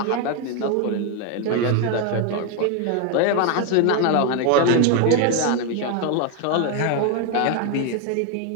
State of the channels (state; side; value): different; both; correlation 0.01